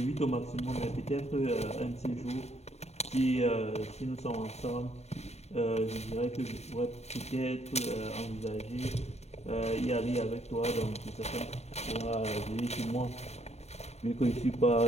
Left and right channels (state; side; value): late; right; 0.31 ms